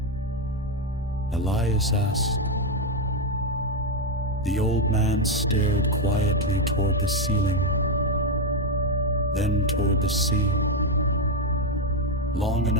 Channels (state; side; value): normal; both; correlation 0.05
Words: Elias asked. The old man stared quietly toward the ceiling, then toward the sea, long